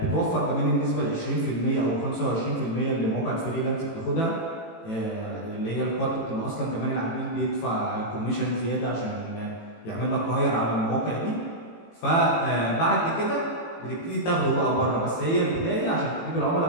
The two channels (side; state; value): right; late; 18 ms